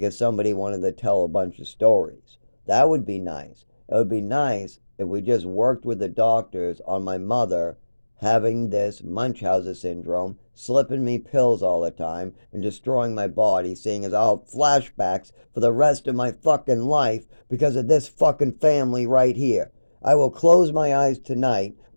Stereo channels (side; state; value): both; inverted; correlation -1.00